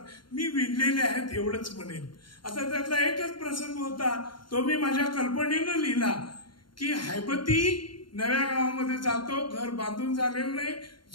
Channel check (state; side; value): late; right; 0.72 ms